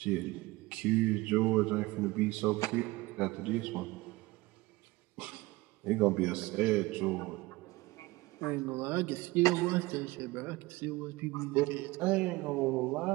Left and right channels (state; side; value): quieter; left; 20.8 dB